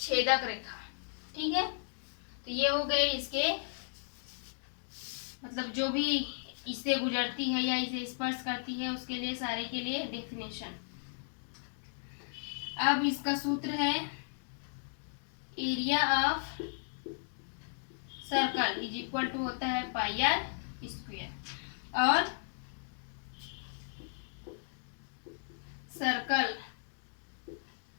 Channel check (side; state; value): right; silent; digital silence